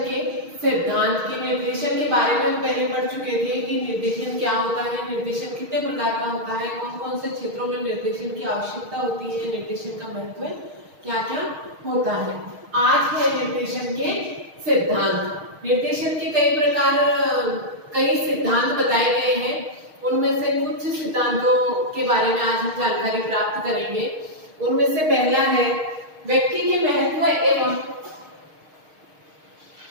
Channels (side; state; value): left; late; 6.4 ms